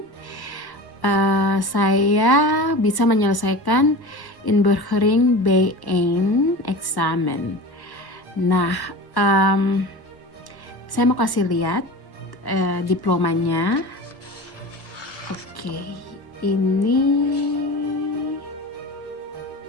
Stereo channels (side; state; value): right; late; 1.1 ms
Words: saya bisa menyelesaikan Inburgering B1 Examen. Nah, saya mau kasih lihat diplomanya. Oke, ini